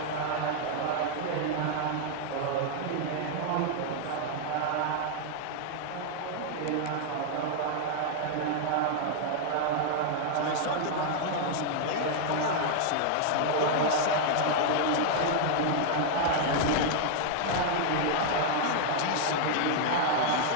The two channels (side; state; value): both; different; correlation 0.00